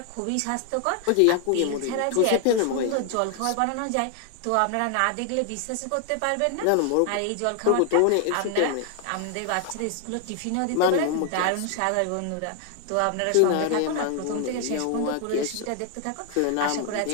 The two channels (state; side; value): different; both; correlation 0.00